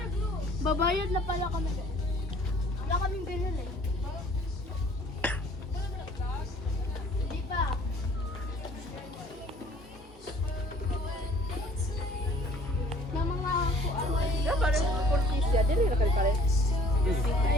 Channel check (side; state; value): both; normal; correlation 0.54